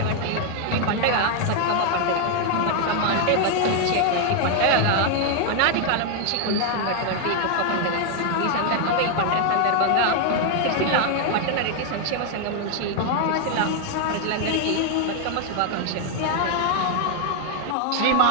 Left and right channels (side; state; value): both; different; correlation 0.00